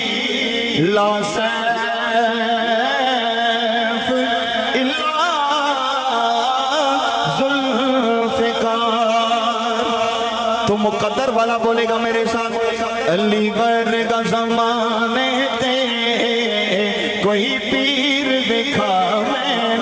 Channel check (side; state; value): both; identical; correlation 1.00